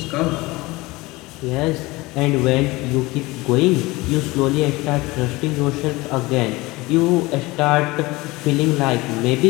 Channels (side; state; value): right; quieter; 21.6 dB